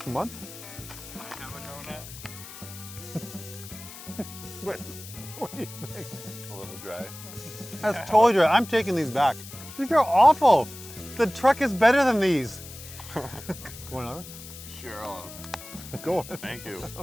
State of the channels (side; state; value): left; noise; hiss, 14 dB below the sound